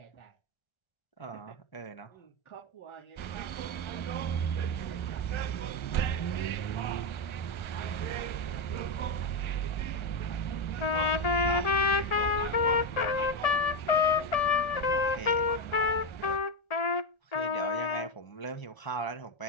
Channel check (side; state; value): right; late; 1.3 ms